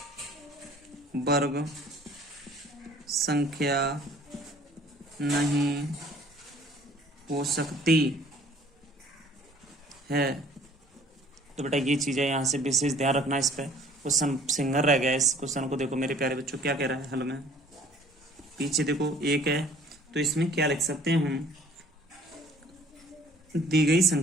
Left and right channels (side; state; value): both; normal; correlation 0.54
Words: वर्ग संख्या नहीं हो सकती है। तो बेटा ये चीज़ें यहाँ से विशेष ध्यान रखना, इस पर क्वेश्चन सिंगल रह गया। इस क्वेश्चन को देखो मेरे प्यारे बच्चों क्या कह रहा है हल में, पीछे देखो 1 है, तो इसमें क्या लिख सकते हैं हम, दी गई